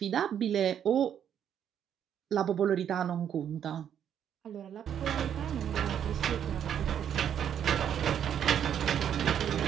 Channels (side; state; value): left; quieter; 9.1 dB